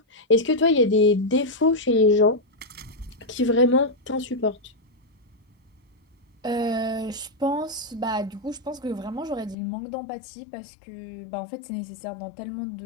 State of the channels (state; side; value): drops out; right; at 9.6 s